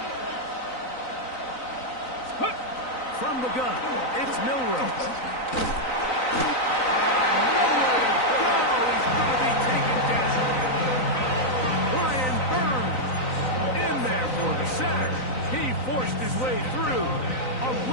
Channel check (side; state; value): right; late; 3.9 ms